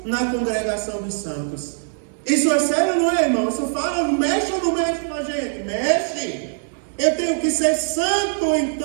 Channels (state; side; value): silent; left; digital silence